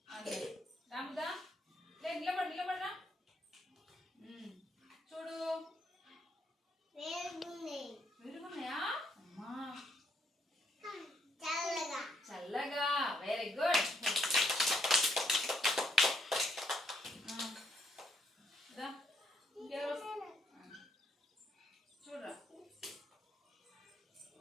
రాముదా లే నిలబడరా చూడు, వేరుగున్నాయా అమ్మా, చల్లగా వెరీ గుడ్. చూడరా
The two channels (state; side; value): normal; both; correlation 0.73